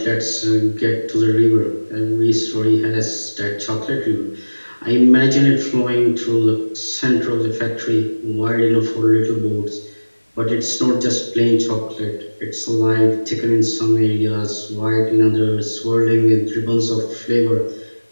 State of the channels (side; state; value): both; inverted; correlation -1.00